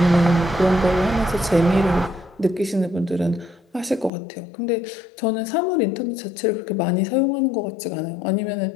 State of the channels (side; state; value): right; drops out; at 4.1 s